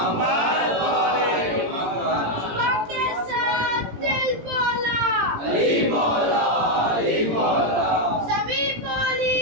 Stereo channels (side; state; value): left; late; 17 ms